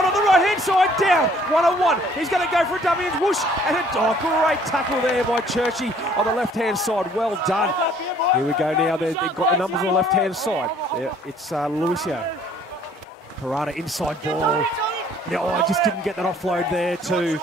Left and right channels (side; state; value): both; normal; correlation 0.58